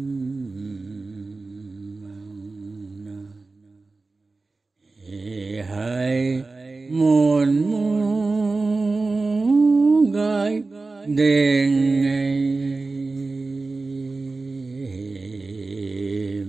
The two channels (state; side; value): quieter; left; 3.6 dB